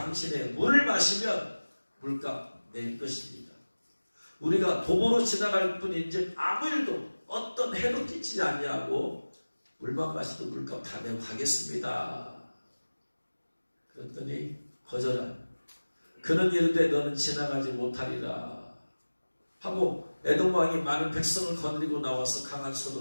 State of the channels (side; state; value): both; inverted; correlation -1.00